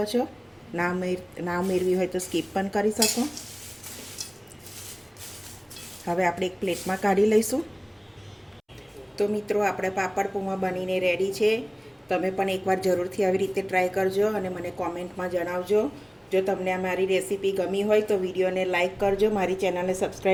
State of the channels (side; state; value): both; identical; correlation 1.00